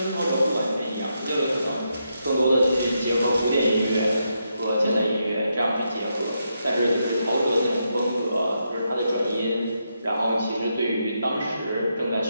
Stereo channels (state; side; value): inverted; both; correlation -0.82